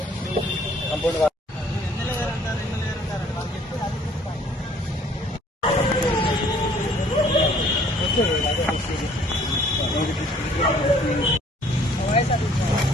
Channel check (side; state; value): both; normal; correlation 0.58